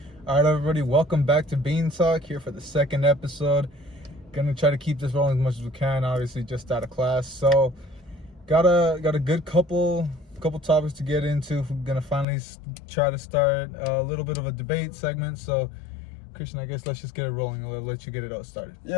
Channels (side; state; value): right; drops out; at 12.2 s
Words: All right, everybody, welcome back to Bean Talk, here for the second episode. Gonna try to keep this rolling as much as we can, obviously just out of class. So got a good couple topics to get into. We're gonna finally try to start a little bit of a debate segment. So Christian, I guess let's just get it rolling. I'll let you get it all started.